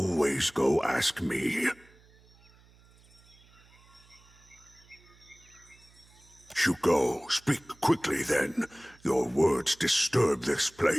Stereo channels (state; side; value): noise; right; hum, 28 dB below the sound